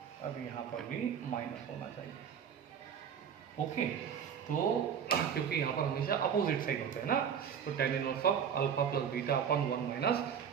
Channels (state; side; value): quieter; left; 7.8 dB